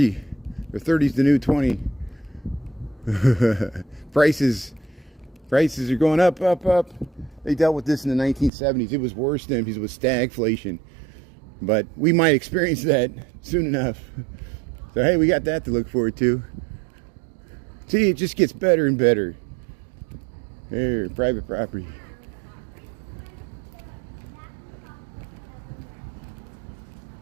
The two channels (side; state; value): left; drops out; at 8.5 s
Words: Or 30's the new 20. Prices are going up. They dealt with this in the 1970s. It was worse then because it was stagflation. But we might experience that soon enough. So hey, we got that to look forward to. See, it just gets better and better. Here, private property.